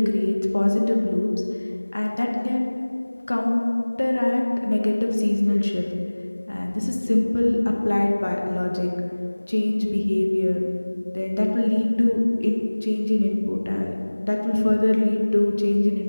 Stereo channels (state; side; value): inverted; both; correlation -1.00